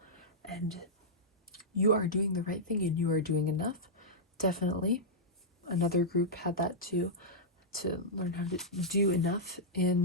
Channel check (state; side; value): normal; both; correlation -0.10